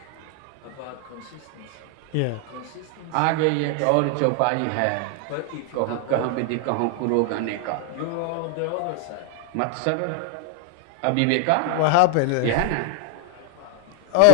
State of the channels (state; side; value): different; both; correlation 0.01